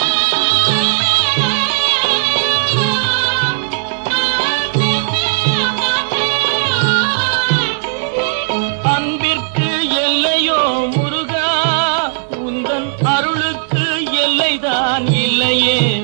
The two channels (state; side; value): silent; left; digital silence